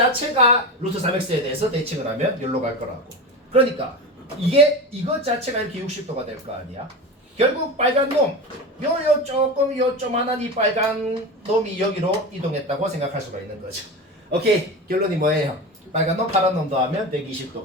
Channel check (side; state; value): both; normal; correlation 0.25